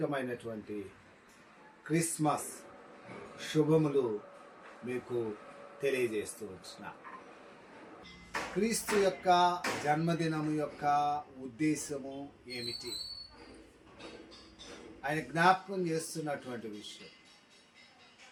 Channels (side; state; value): both; identical; correlation 1.00